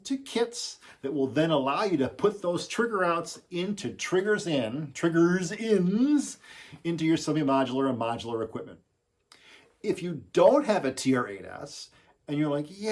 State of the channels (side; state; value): both; identical; correlation 1.00